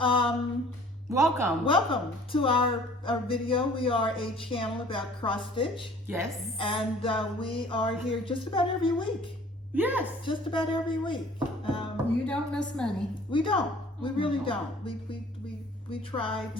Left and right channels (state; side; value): normal; both; correlation 0.52